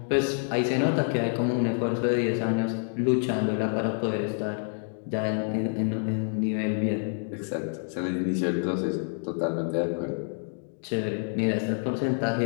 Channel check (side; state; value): right; silent; 60 dB below the other